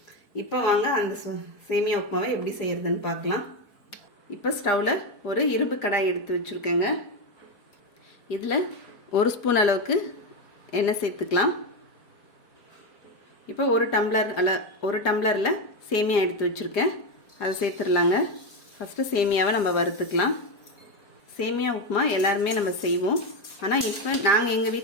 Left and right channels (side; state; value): right; late; 5.0 ms